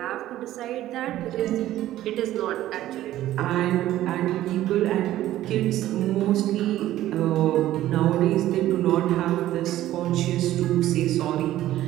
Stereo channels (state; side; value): quieter; left; 14.0 dB